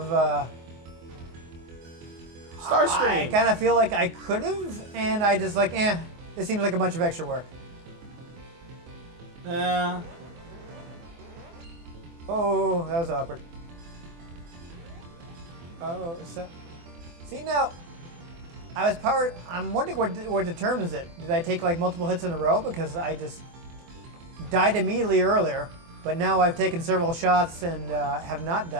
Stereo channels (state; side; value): late; left; 24 ms